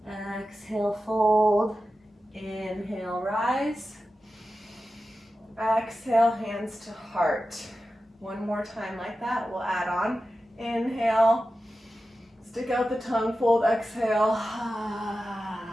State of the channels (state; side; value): normal; both; correlation 0.93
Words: Exhale, fold. Inhale, rise. Exhale, hands to heart. One more time like that, we'll add on. Inhale, stick out the tongue, fold, exhale.